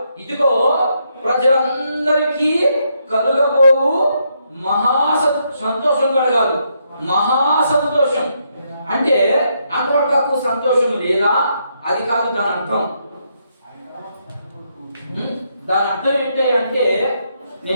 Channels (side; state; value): both; inverted; correlation -0.77